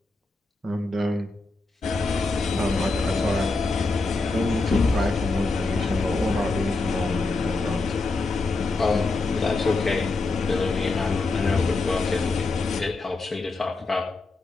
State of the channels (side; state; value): right; quieter; 3.5 dB